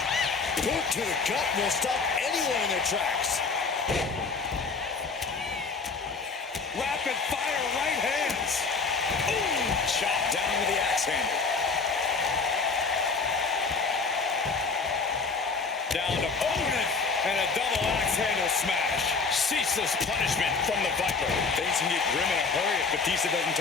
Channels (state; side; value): quieter; right; 4.6 dB